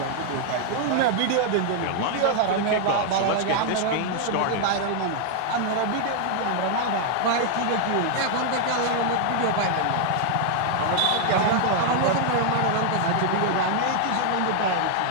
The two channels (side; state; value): both; different; correlation 0.00